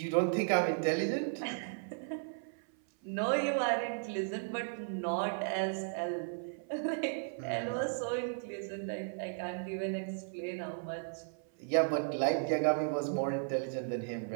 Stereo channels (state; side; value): silent; left; 54 dB below the other